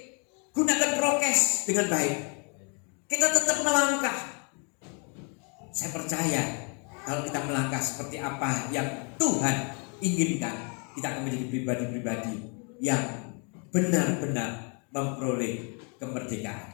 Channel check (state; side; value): quieter; right; 37.1 dB